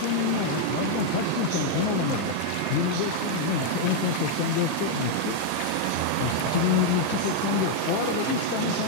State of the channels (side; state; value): both; different; correlation 0.00